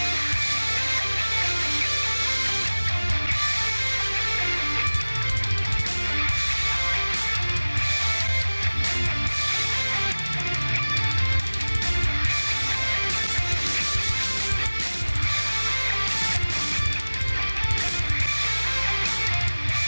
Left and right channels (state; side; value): inverted; both; correlation -1.00